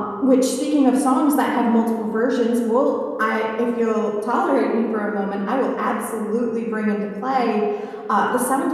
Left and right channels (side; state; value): both; identical; correlation 1.00